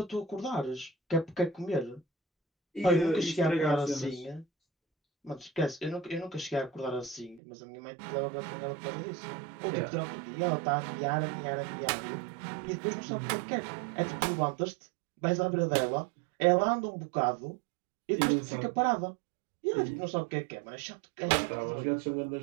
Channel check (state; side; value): drops out; left; at 7.4 s